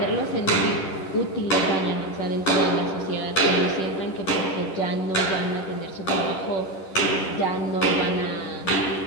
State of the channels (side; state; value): right; late; 11 ms